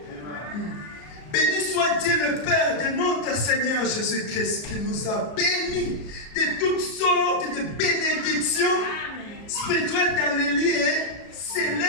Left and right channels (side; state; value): right; late; 33 ms